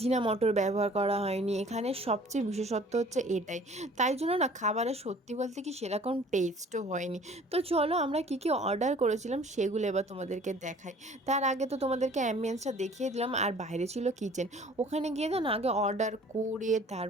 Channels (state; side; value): normal; both; correlation 0.51